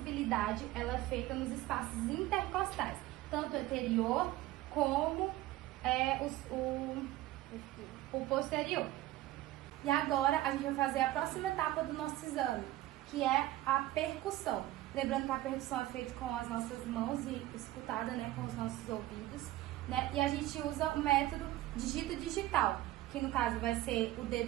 ela é feita nos espaços intercostais, tanto anterior como o posterior. E agora a gente vai fazer a próxima etapa do nosso exame, que é a percussão. Lembrando que a percussão é feita com as nossas mãos e escutada, né, com os nossos ouvidos, né? E a gente usa o método digito digital, que no caso vai ser o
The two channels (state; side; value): quieter; left; 15.9 dB